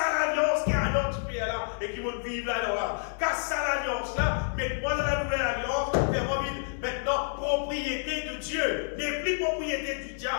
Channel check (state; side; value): silent; right; digital silence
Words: qui est à notre pays là et qui va vivre là. Casse l'alliance là, mets-moi dans la nouvelle alliance, fais-moi vivre maintenant propriété de Dieu, n'est plus propriété du